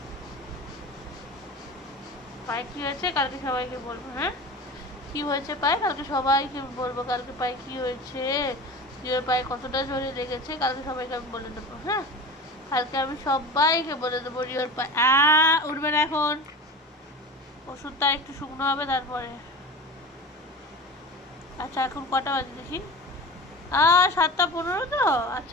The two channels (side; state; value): both; normal; correlation 0.33